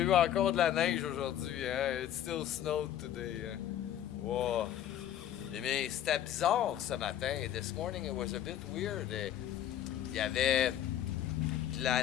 eu encore de la neige aujourd'hui, hein? It still snowed today, hein? Wow. Mais c'était bizarre ce matin. This morning it was a bit weird. Il y avait de la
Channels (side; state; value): right; quieter; 11.1 dB